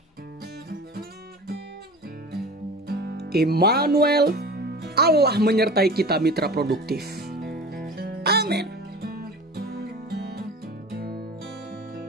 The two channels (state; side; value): normal; both; correlation 0.37